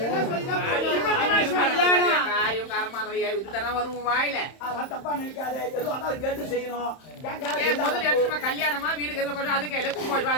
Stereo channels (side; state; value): right; late; 31 ms